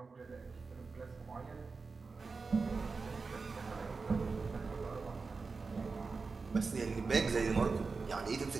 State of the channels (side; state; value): left; quieter; 4.4 dB